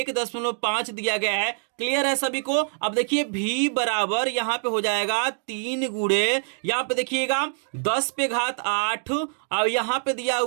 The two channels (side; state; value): left; silent; digital silence